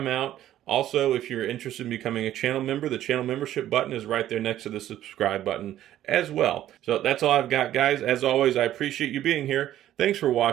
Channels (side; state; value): left; quieter; 12.6 dB